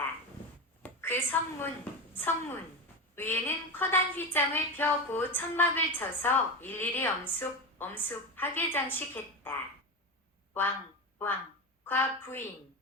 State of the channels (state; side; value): normal; both; correlation 0.19